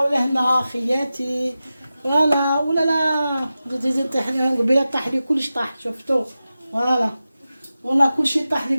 ولهنا خياتي. فوالا ولا لا زيد طيح لي قبيله، طاح لي كلش طاح شفتو. فوالا والله كلشي طاح لي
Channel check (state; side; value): inverted; both; correlation -0.94